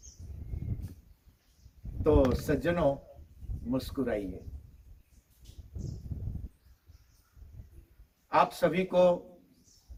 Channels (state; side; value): identical; both; correlation 1.00